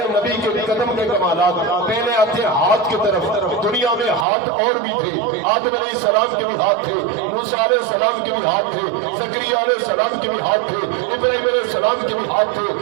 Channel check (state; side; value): drops out; left; at 4.2 s